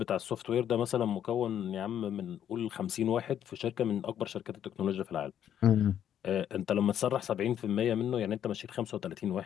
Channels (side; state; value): right; quieter; 9.9 dB